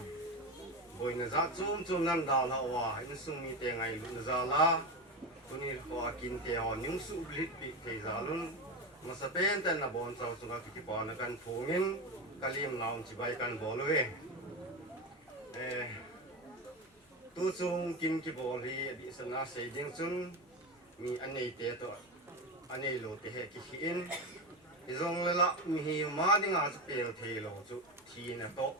rồi người ra chung năm đào là hòa anh sung mi tiền ngày luôn ra lá tôi đi qua kinh tế họ những sự lít bị thế ra luôn mà sẽ bên tên là bọn cháu chúng ta cái bọn nó cần phổ biến cái liềm nào chỉ bay cần bỏ lưỡi tôi chung kinh cái bỏ lì bị sân na xây dựng chung mi anh này thế thôi anh này lột thế cái khiên thì rong là mi mà đi ngã sẽ bèo thế lo chú thì là tốt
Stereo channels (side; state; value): both; normal; correlation 0.19